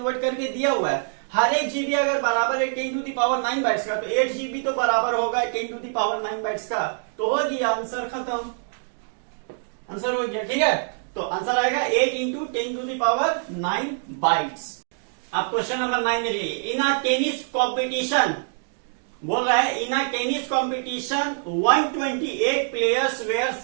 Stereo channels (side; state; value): left; silent; digital silence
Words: करके दिया हुआ है। हर एक GB अगर बराबर है 10 to the power 9 बाइट्स का, तो 8 GB तो बराबर होगा 10 to the power 9 बाइट्स का। तो हो गया आंसर, खत्म, आंसर हो गया, ठीक है। तो आंसर आएगा 8 into 10 to the power 9 bytes. अब क्वेश्चन नंबर 9 में देखिए, इन अ टेनिस कॉम्पिटिशन, बोल रहा है in a tennis competition 128 players were